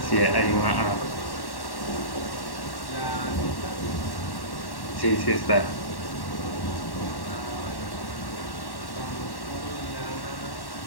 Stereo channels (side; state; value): right; late; 1.1 ms